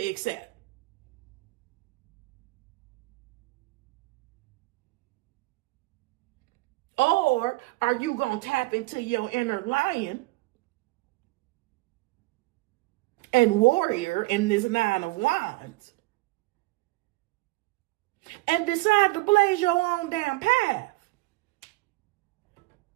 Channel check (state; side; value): quieter; left; 22.2 dB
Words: accept. Or are you going to tap into your inner lion and warrior in this 9 of Wands and decide to blaze your own damn path